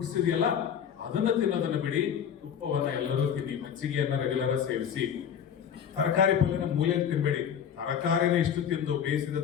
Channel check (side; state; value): right; quieter; 8.3 dB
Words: ಇದೆಯಲ್ಲ, ಅದನ್ನ ತಿನ್ನೋದನ್ನ ಬಿಡಿ. ತುಪ್ಪವನ್ನ ಎಲ್ಲರೂ ತಿನ್ನಿ. ಮಜ್ಜಿಗೆಯನ್ನ ರೆಗ್ಯುಲರ್ ಸೇವಿಸಿ. ತರಕಾರಿ ಪಲ್ಯನ ಮೂಲೆಯಲ್ಲಿ ತಿನ್ಬೇಡಿ. ತರಕಾರಿನ ಇಷ್ಟು ತಿಂದು ಬೇಯಿಸಿದ